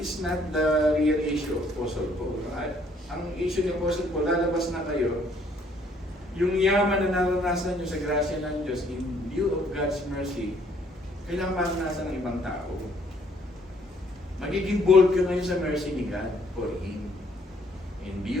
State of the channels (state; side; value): normal; both; correlation 0.64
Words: not the real issue of Apostle Paul. Ang issue ni Apostle Paul, lalabas na kayo, yung yaman na naranasan nyo sa grasya ng Diyos in view of God's mercy, kailangan maranasan ng ibang tao. Magiging bold ka ngayon sa mercy ni God for Him. In